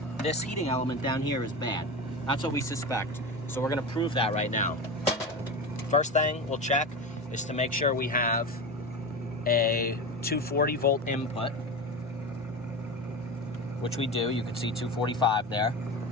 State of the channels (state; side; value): normal; both; correlation 0.24